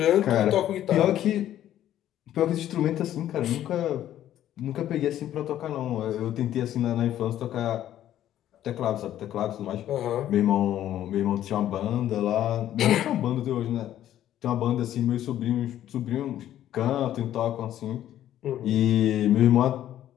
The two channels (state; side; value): quieter; right; 12.0 dB